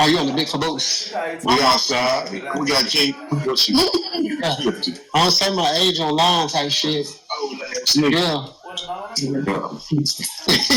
Are you on the big caboose? We outside. We got King. What you? I don't say my age online type shit. Yeah.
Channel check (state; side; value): identical; both; correlation 1.00